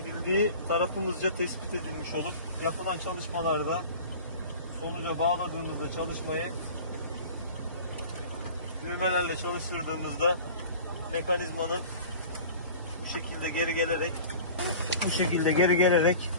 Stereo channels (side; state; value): both; inverted; correlation -0.40